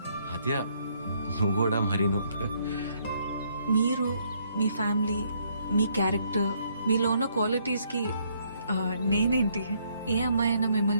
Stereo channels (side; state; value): both; inverted; correlation -0.70